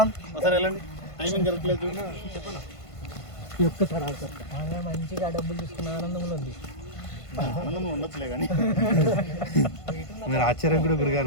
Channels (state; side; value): late; right; 1.5 ms